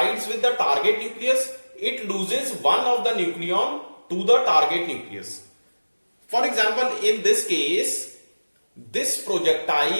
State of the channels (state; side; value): inverted; both; correlation -1.00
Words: with the target nucleus, it loses one of the nucleon to the target nucleus. For example, in this case, this